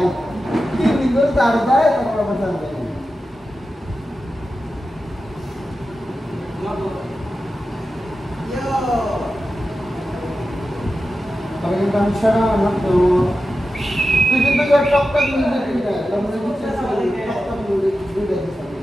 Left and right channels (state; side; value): normal; both; correlation 0.92